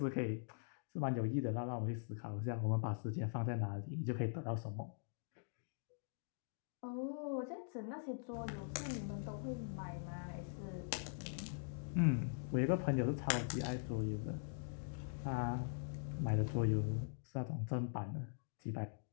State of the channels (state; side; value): silent; right; digital silence